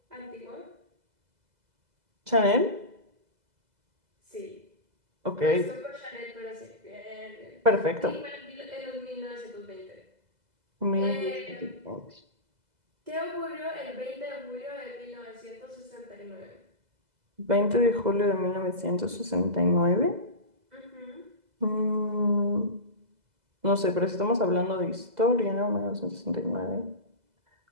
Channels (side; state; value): left; late; 2.0 ms